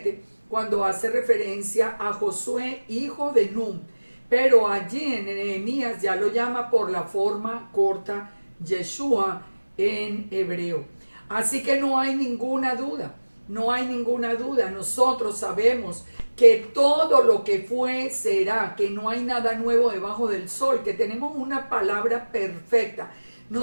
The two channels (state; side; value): inverted; both; correlation -1.00